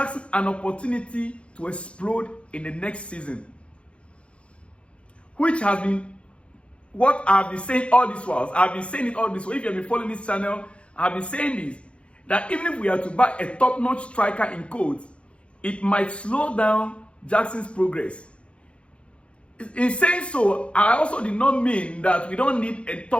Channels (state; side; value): late; right; 0.060 ms